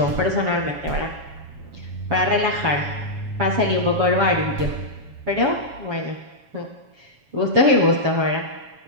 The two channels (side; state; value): left; late; 7.2 ms